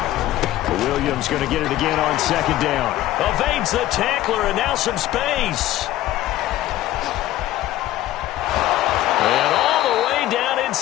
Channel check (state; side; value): quieter; right; 14.6 dB